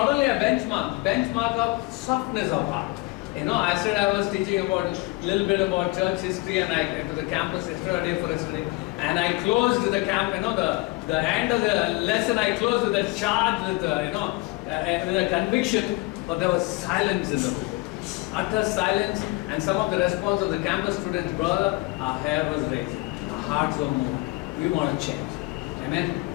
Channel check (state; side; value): quieter; right; 22.8 dB